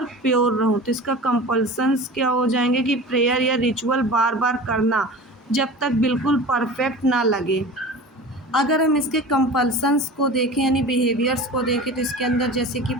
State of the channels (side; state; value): both; normal; correlation 0.36